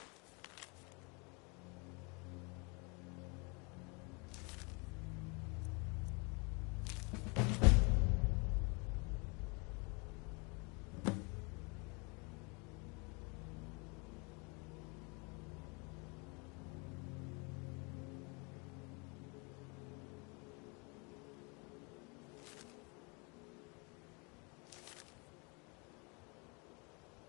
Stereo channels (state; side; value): quieter; right; 31.3 dB